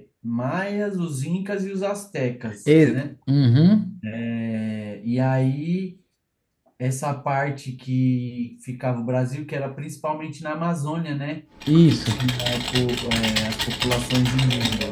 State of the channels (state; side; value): identical; both; correlation 1.00